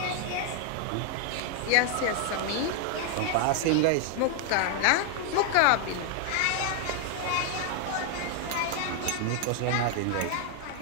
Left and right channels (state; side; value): different; both; correlation 0.00